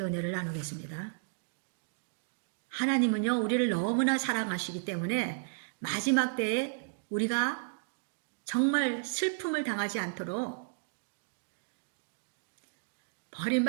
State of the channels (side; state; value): left; silent; digital silence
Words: 은혜를 나누겠습니다. 하나님은요, 우리를 너무나 사랑하시기 때문에 마지막 때에 우리가 정말 슬픔을 당하지 않도록,